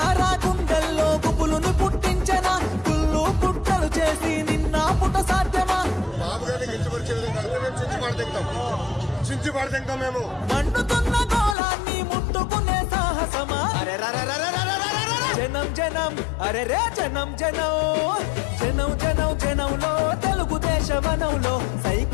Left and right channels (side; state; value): right; drops out; at 11.6 s